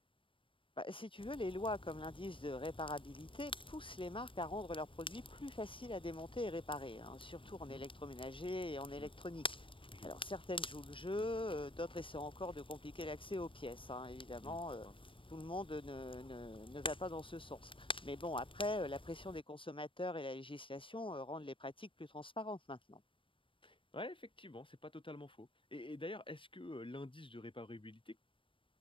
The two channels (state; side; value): late; right; 0.25 ms